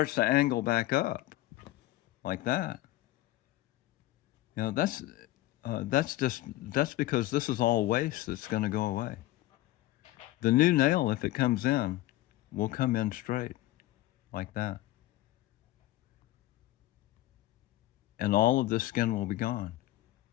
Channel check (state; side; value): quieter; right; 16.4 dB